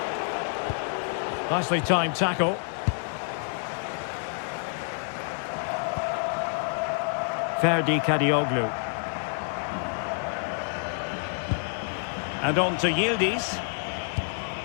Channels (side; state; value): right; silent; digital silence